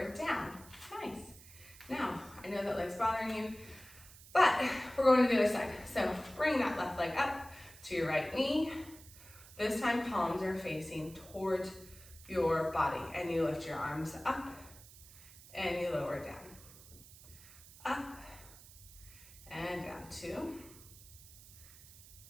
down. Nice. Now, I know that leg's bothering you, but we're going to the other side. So bring that left leg up to your right knee. This time palms are facing towards your body, and you lift your arms up and you lower down. Up and down. 2,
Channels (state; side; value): noise; right; hiss, 19 dB below the sound